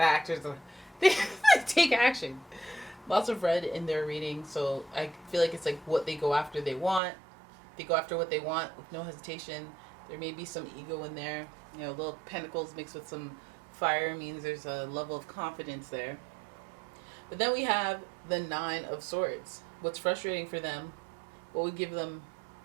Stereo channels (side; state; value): left; drops out; at 7.0 s